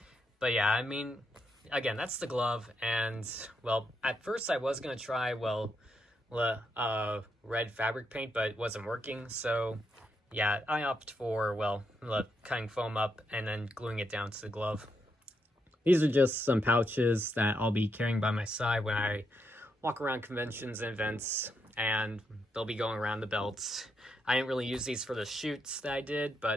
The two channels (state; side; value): normal; both; correlation 0.80